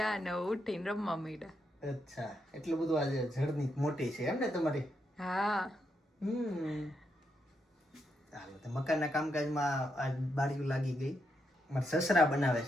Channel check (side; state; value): both; normal; correlation 0.81